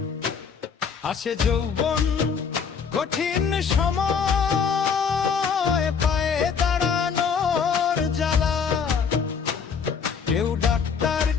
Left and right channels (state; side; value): quieter; right; 6.3 dB